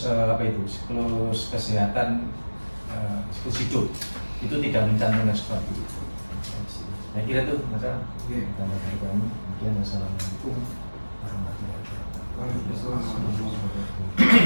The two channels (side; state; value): both; inverted; correlation -1.00